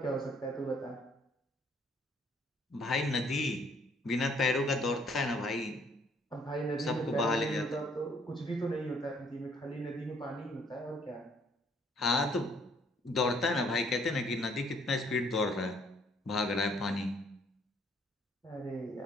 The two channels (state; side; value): normal; both; correlation 0.63